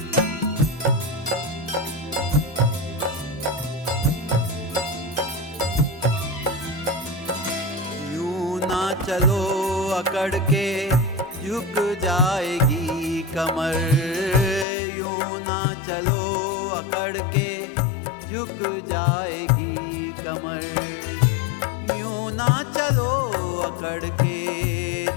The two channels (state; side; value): drops out; right; at 14.7 s